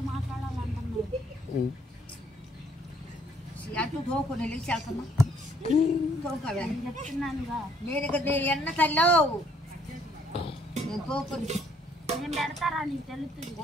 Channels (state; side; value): normal; both; correlation 0.65